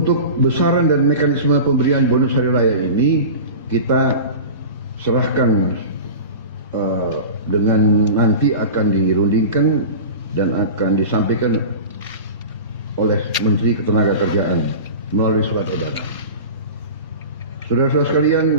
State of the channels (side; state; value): both; inverted; correlation -0.33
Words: besaran dan mekanisme pemberian bonus hari raya ini kita serahkan dengan nanti akan dirundingkan dan akan disampaikan oleh Menteri Ketenagakerjaan melalui surat edaran. Saudara-saudara sekalian,